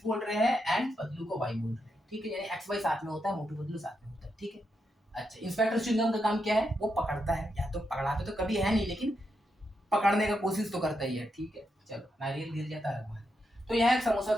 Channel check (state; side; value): normal; both; correlation 0.83